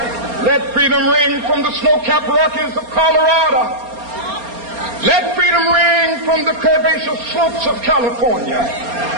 let freedom ring. From the snow-capped Rockies of Colorado, let freedom ring. From the curvaceous slopes of California.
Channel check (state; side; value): late; left; 4.3 ms